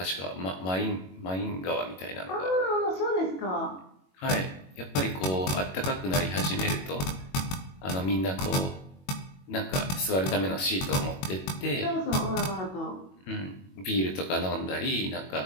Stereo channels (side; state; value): right; late; 22 ms